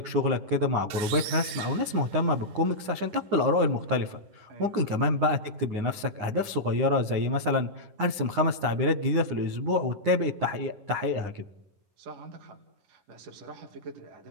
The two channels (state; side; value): late; left; 9.7 ms